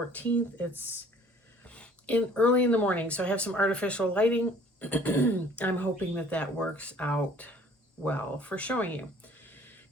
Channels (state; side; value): normal; both; correlation 0.54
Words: It's early in the morning, so I have some artificial lighting. I'm hoping that works out well for showing you.